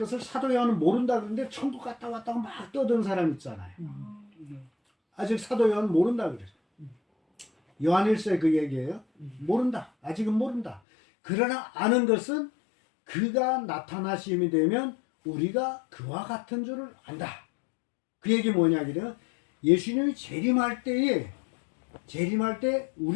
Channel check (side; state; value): right; drops out; at 10.8 s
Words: 사도 요한은 모른다 그러는데 천국 갔다 왔다고 막 떠드는 사람 있잖아요. 아직 사도 요한은 모른다 그래요. 요한일서에 그 얘기예요. 모른다. 아직은 모른다. 그러나 아는 것은 그가 나타나심이 되면 우리가 그와 같은 줄을 안다. 그 얘기 뭐냐 그래요? 예수님이 재림할 때